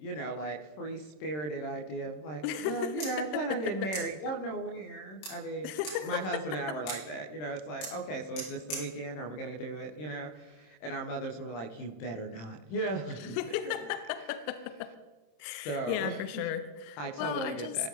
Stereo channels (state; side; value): late; right; 26 ms